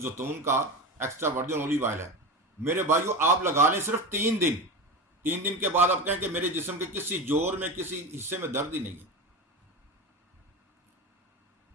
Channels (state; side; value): normal; both; correlation 0.24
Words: का एक्स्ट्रा वर्जिन ऑलिव ऑयल है, मेरे भाइयों आप लगा लें सिर्फ 3 दिन। 3 दिन के बाद आप कहें कि मेरे जिस्म के किसी जोड़ में, किसी हिस्से में दर्द ही नहीं है।